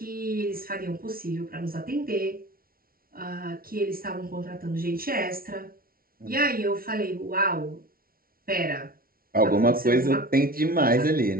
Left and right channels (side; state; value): left; late; 0.43 ms